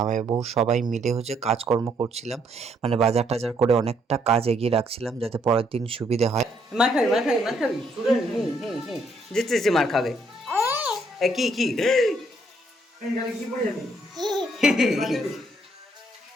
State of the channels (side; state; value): both; normal; correlation 0.70